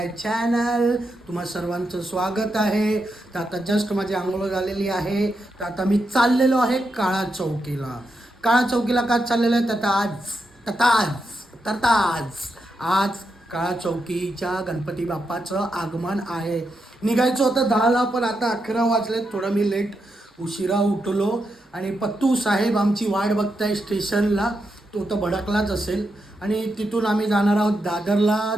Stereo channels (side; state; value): both; normal; correlation 0.85